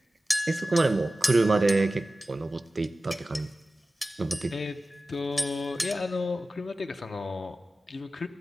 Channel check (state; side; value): normal; both; correlation 0.95